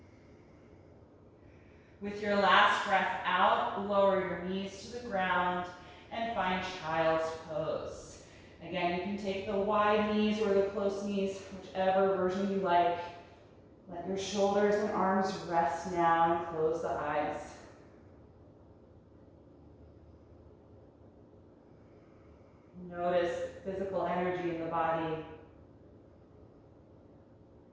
With your last breath out, lower your knees to the ground and find child's pose. Again, you can take the wide knees or the close knees, whichever version you like. Let your shoulders and arms rest now and close the eyes. Notice physical energy in the body.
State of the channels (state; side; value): identical; both; correlation 1.00